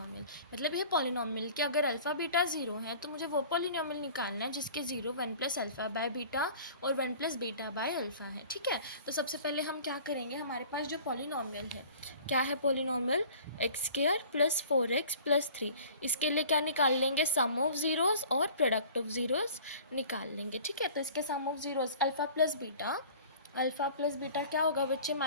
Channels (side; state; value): both; inverted; correlation -0.45